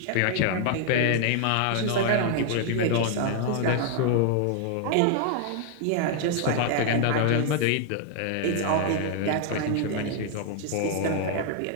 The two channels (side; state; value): both; different; correlation 0.00